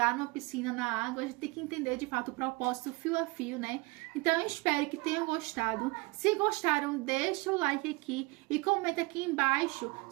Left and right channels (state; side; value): quieter; left; 24.8 dB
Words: numa piscina na água, a gente tem que entender de fato o propósito fio a fio, né? Então eu espero que tenham gostado. Se gostaram, deixa o like aqui e comenta aqui embaixo